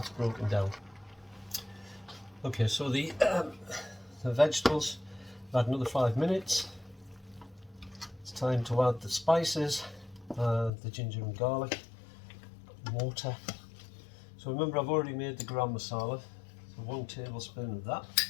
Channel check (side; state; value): right; drops out; at 10.7 s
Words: broken down. Okay, so the vegetables, add another 5 minutes. It's time to add the spices, the ginger and garlic, water. So remember, I've already made the garam masala, so 1 tablespoon of that.